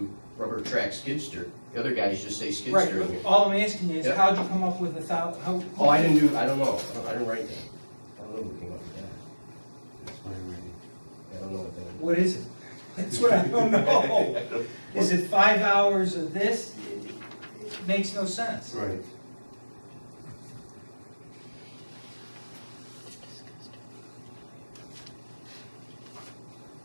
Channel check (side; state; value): both; inverted; correlation -1.00